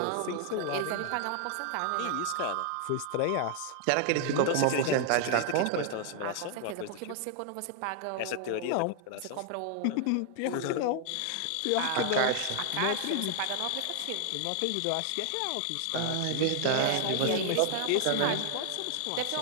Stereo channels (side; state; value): both; different; correlation 0.00